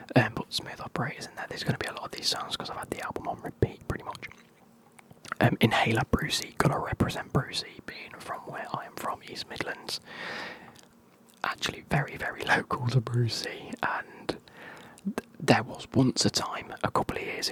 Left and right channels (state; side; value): identical; both; correlation 1.00